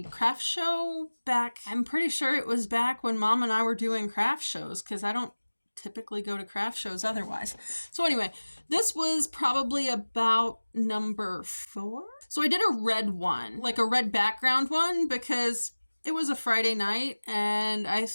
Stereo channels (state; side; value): inverted; both; correlation -1.00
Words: craft show back. I'm pretty sure it was back when Mom and I were doing craft shows, because I don't typically go to craft shows otherwise. So anyway, this was probably about number 4. So I did a red one, like a red background one, because it was a Friday night and I